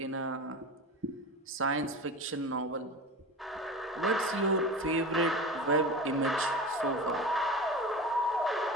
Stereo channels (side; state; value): both; normal; correlation 0.31